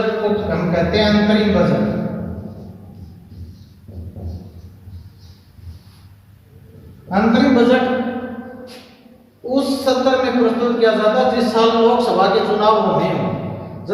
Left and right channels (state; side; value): identical; both; correlation 1.00